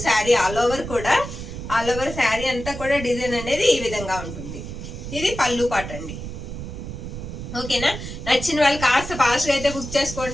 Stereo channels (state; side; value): noise; right; rumble, 8 dB below the sound